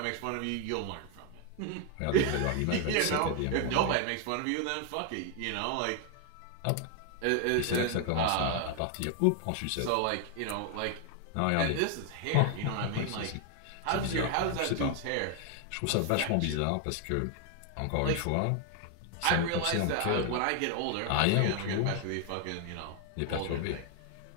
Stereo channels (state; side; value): different; both; correlation 0.00